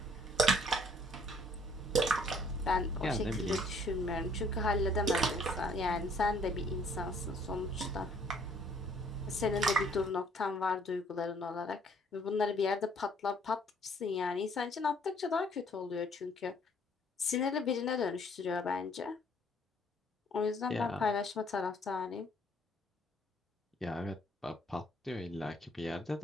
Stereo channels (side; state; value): both; normal; correlation 0.61